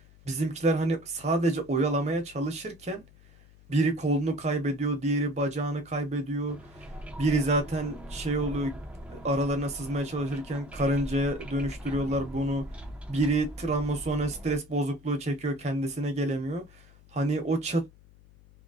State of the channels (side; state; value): left; noise; hum, 25 dB below the sound